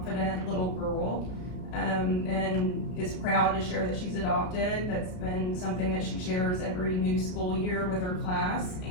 little girl, and is proud to share that she's adopted. That's been something that she shares every new school year with her class.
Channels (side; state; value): right; late; 33 ms